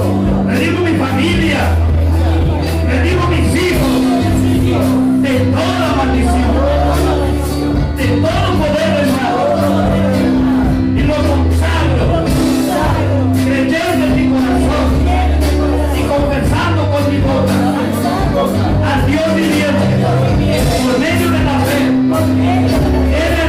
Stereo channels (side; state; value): both; identical; correlation 1.00